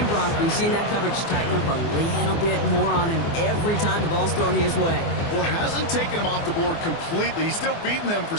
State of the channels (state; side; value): late; right; 24 ms